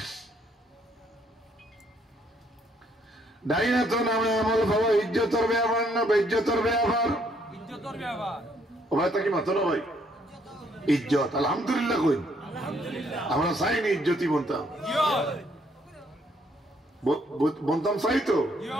ডাইন হাতে নামে আমল পাবো। ইজ্জতের ব্যাপার না বেইজ্জতের ব্যাপার? ও ভাই তা কি মাত্র না ভাই ইজ্জত আলহামদুলিল্লাহ কই আমরা চাইনি ইজ্জতি বলতাম, বলতাম চাই তো।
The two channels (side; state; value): both; normal; correlation 0.69